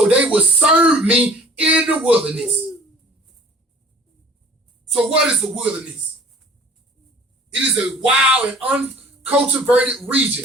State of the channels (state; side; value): normal; both; correlation 0.49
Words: they will serve me in the wilderness. So what is the wilderness? It is a wild and uncultivated